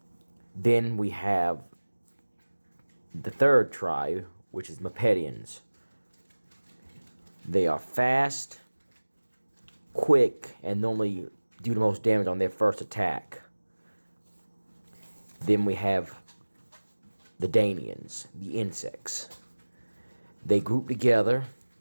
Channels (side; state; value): both; inverted; correlation -1.00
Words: Then we have the 3rd tribe, which is Mepedians. They are fast, quick, and normally do the most damage on their first attack. Then we have the Danians, the insects. They group together